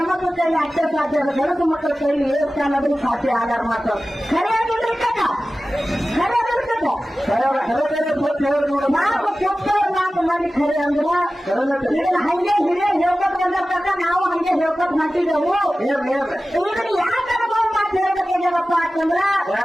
ಕೈಲಿ ಅಷ್ಟೇ ಸಾಧ್ಯ ಅದ. ಗಣಸು ಮಕ್ಕಳ ಕೈಲಿ ಏರ್ತಾ ಅನ್ನೋದು ಸಾಧ್ಯ ಆಗಾರ ಮಾತು ಖರೆ ಆಗಿಲ್ರಿ ಕಕ್ಕ ಖರೆ ಆಗಿರ್ತದ. ನಾವು ಕೊಟ್ಟವ್ರು 4 ಮಂದಿ ಖರೆ ಅಂದ್ರ ಇದನ್ನ ಹಂಗೆ ಹಿರಿಯ ಹೇಳ್ಕೊಟ್ ಬಂದಿರ್ತಾರ ನಾವು ಹಂಗೆ ಹೇಳ್ಕೊಟ್ ಮಾಡ್ತಿದ್ದೆವು. ಇದನ್ನ ಯಾಕೆ ಅನುಭವ ಮಾತು ಹೇಳ್ಬೇಕಾಗ್ಯಾವಪ್ಪ ಅಂತಂದ್ರ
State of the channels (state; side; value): normal; both; correlation 0.95